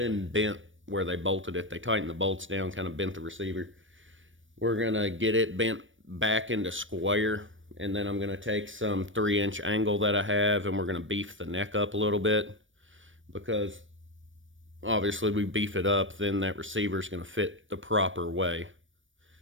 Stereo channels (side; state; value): left; late; 0.56 ms